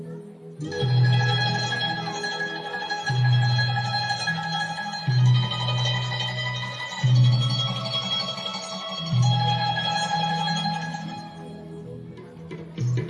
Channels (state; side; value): identical; both; correlation 1.00